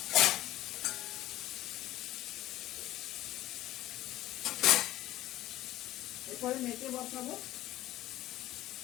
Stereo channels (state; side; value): quieter; right; 15.3 dB